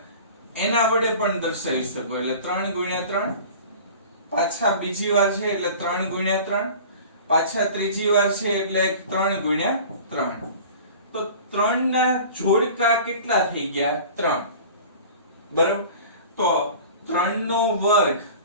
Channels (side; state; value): both; inverted; correlation -0.41